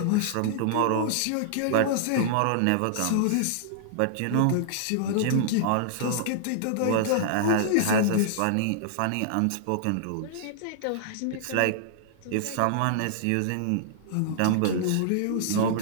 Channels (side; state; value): both; different; correlation -0.01